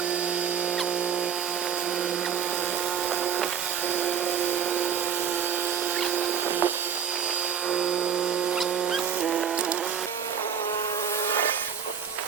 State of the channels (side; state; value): left; quieter; 7.6 dB